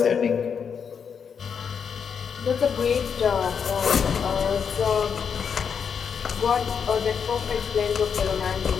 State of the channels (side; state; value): right; quieter; 6.8 dB